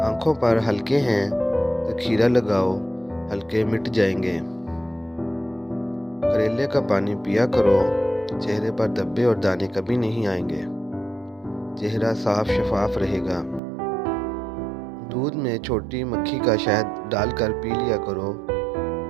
पर हलके हैं तो खीरा लगाओ, हलके मिट जाएंगे। करेले का पानी पिया करो, चेहरे पर धब्बे और दाने कभी नहीं आएंगे। चेहरा साफ शफाफ रहेगा। दूध में छोटी मक्खी का शहद डालकर पी लिया करो,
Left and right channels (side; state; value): left; drops out; at 13.6 s